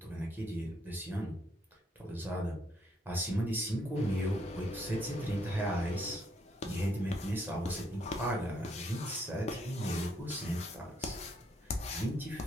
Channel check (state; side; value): normal; both; correlation 0.72